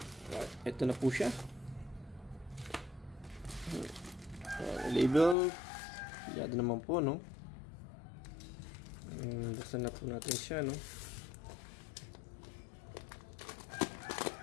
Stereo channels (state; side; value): drops out; right; at 5.4 s